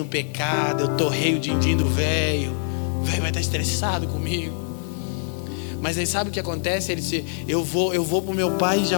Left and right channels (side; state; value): right; silent; digital silence